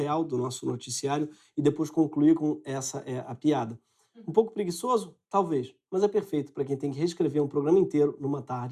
do nosso noticiário e depois concluir com essa é a piada. Um pouco preguiçoso? Talvez, mas é perfeito para quem tem que reescrever um programa inteiro numa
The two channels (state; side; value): identical; both; correlation 1.00